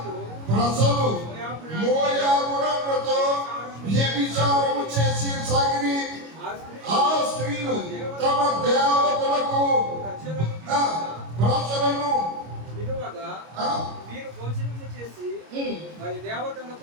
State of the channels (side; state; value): left; late; 25 ms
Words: ప్రజలు మోయాబురాలతో వ్యభిచారము చేసి సాగిరి. ఆ స్త్రీలు తమ దేవతలకు ప్రజలను విలువగా మీరు భోజనము చేసి వారి